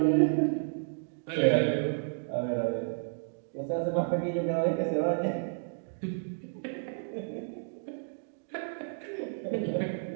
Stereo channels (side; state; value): left; silent; digital silence